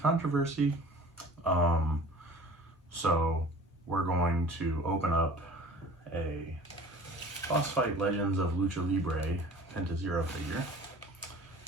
So we're going to open up a Boss Fight Legends of Lucha Libre Penta Zero figure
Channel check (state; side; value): normal; both; correlation 0.44